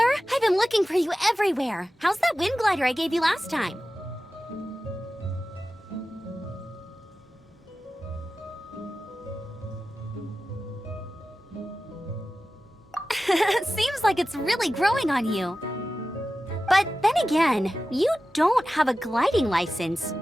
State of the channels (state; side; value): normal; both; correlation 0.94